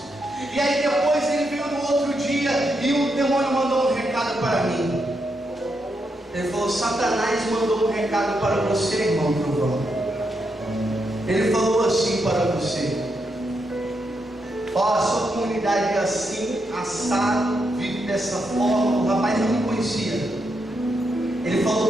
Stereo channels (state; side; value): normal; both; correlation 0.82